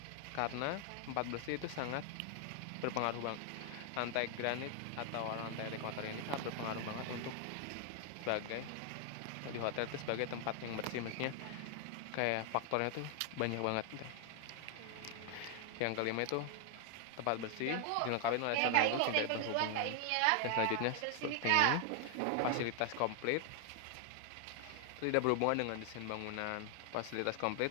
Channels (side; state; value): both; different; correlation 0.00